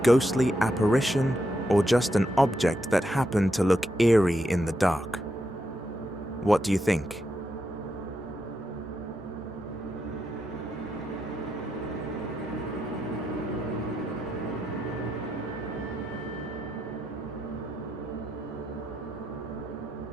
apparition or just an object that happened to look eerie in the dark. What do you think?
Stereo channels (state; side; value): normal; both; correlation 0.83